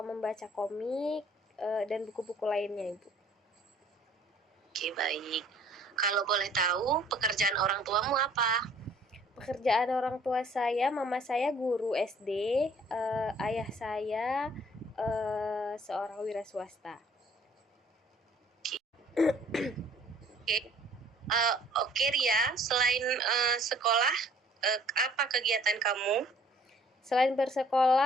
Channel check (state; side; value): normal; both; correlation 0.57